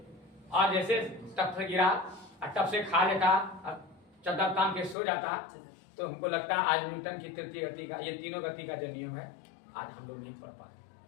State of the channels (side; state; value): right; drops out; at 5.0 s